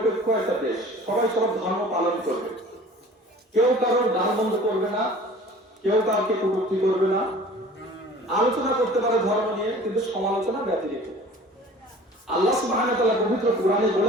একটা দেশ, সবাই সব ধর্ম পালন করবে, কেউ কারোর গান বন্ধ করবে না, কেউ কাউকে কটূক্তি করবে না, আলোচনা করতে পারে ধর্ম নিয়ে, কিন্তু সমালোচনা ব্যতিরেকে। আল্লাহ সুবহানাহু ওয়া তাআলা পবিত্র কোরআনে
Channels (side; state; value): both; normal; correlation 0.45